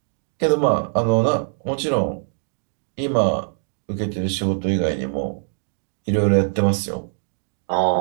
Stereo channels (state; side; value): silent; left; digital silence